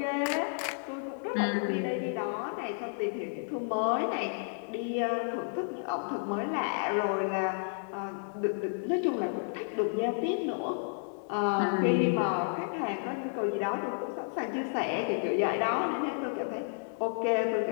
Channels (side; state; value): right; silent; digital silence